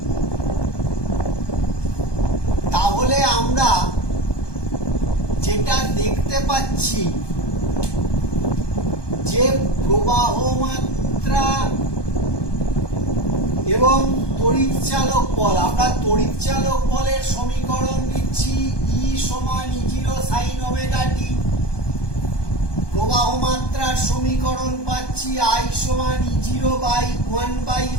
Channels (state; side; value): late; right; 1.2 ms